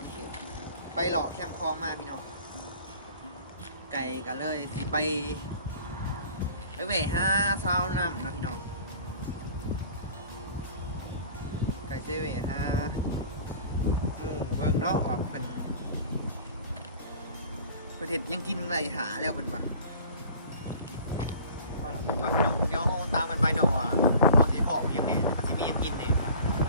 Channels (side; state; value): both; inverted; correlation -0.45